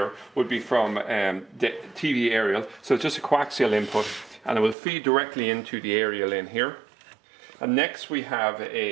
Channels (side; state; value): left; drops out; at 4.8 s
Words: would be from the TV aerial, so it's just a coaxial input, and it will feed directly into the aerial in here. And next we have